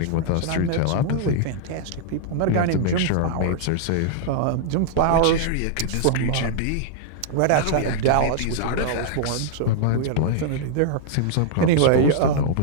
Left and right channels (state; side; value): different; both; correlation -0.01